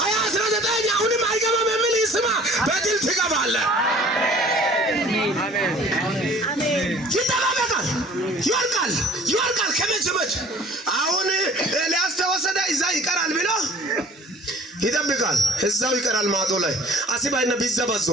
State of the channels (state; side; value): normal; both; correlation 0.50